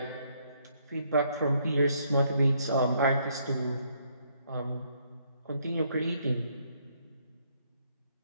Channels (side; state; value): both; inverted; correlation -0.70